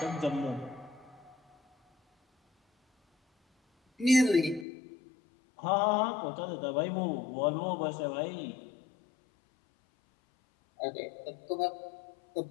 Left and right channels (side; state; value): right; drops out; at 4.7 s